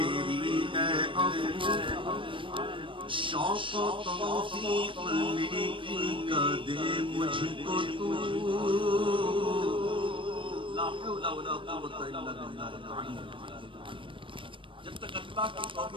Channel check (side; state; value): left; late; 0.25 ms